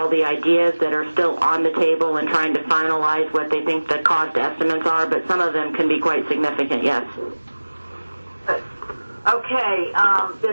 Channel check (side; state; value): both; inverted; correlation -1.00